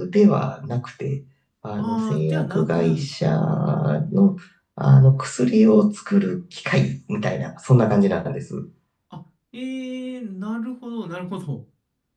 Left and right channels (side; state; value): both; identical; correlation 1.00